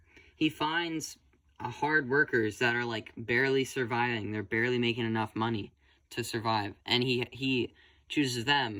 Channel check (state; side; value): identical; both; correlation 1.00